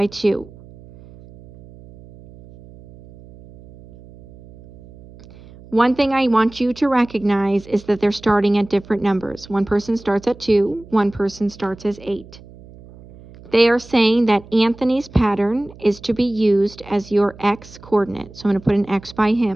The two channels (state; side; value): noise; right; hum, 21 dB below the sound